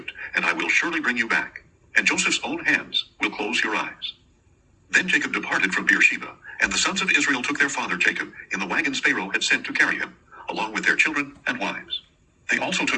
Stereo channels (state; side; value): identical; both; correlation 1.00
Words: and I will surely bring you back, and Joseph's own hands will close your eyes. Then Jacob departed from Beersheba, and the sons of Israel took their father Jacob in the wagons Pharaoh had sent to carry him, along with their children and wives. They also